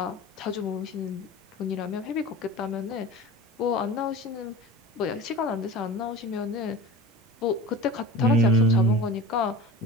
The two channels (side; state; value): both; normal; correlation 0.35